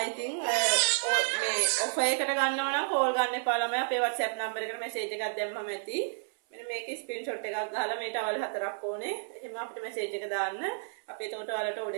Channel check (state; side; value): silent; left; 57 dB below the other